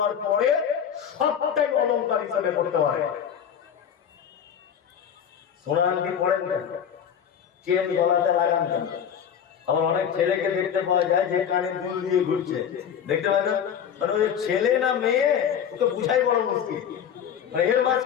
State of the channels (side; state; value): right; quieter; 8.5 dB